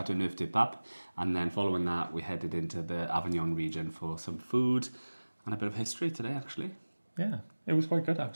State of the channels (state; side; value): inverted; both; correlation -1.00